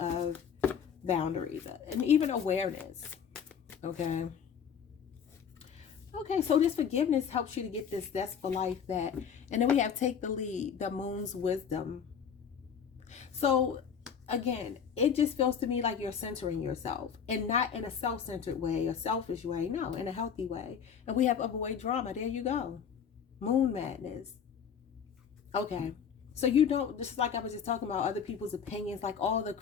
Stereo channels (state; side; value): quieter; right; 7.4 dB